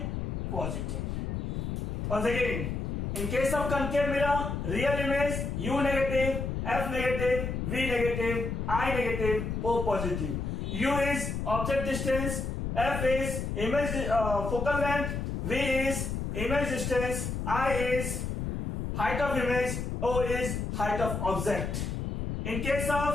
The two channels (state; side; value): noise; left; rumble, 3 dB below the sound